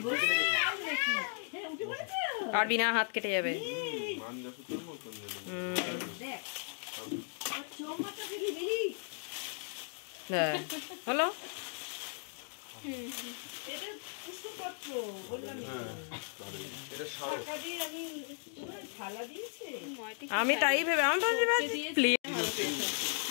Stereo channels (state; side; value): silent; right; 54 dB below the other